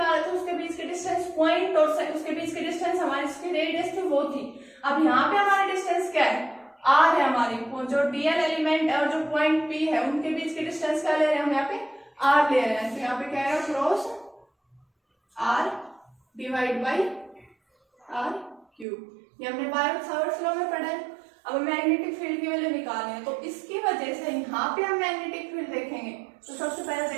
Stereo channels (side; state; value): left; drops out; at 18.9 s